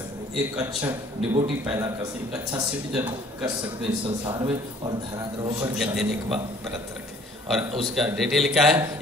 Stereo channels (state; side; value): normal; both; correlation 0.56